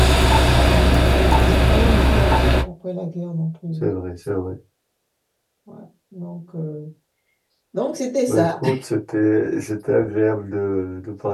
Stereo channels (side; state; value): both; identical; correlation 1.00